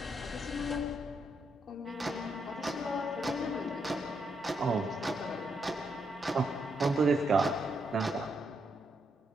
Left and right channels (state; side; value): normal; both; correlation 0.79